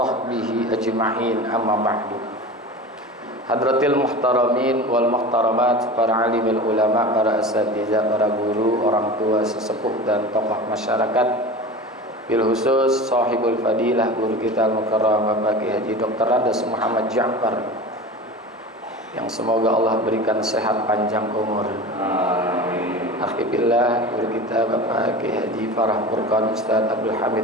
ajma'in, amma ba'du. Hadratil muhtaramin wal muhtaramat, para alimil ulama, para asatidzah, para guru, orang tua, sesepuh dan tokoh masyarakat, bil khusus sahibul fadilah guru kita al-mukarram Bapak Kiai Haji Dr. Radas Muhammad Ja'far, yang semoga Allah berikan sehat panjang umur. Amin. Alhamdulillah, guru kita Bapak Kiai Haji Farah Furqan, Ustaz Abdul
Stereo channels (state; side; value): normal; both; correlation 0.32